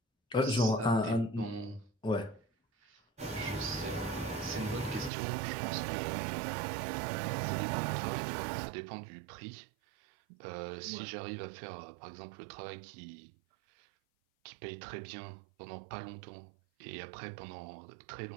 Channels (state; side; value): drops out; left; at 5.1 s